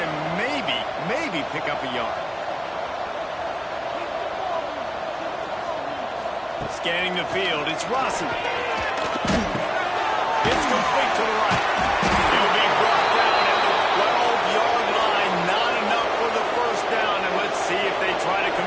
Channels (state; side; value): identical; both; correlation 1.00